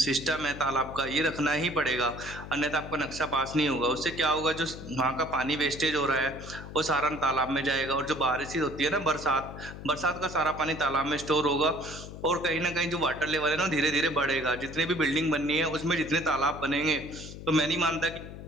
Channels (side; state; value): left; noise; hum, 12 dB below the sound